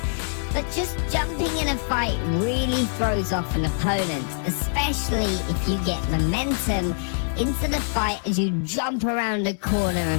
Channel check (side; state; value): right; silent; digital silence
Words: but just jumping in a fight really throws off an opponent, especially if you get momentum into the fight as you jump around a corner